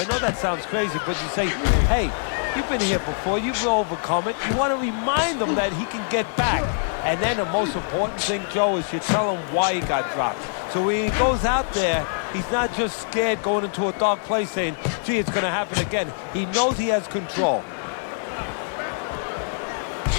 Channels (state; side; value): silent; right; digital silence